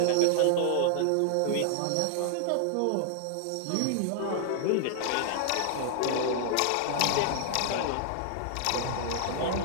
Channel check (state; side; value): different; both; correlation 0.00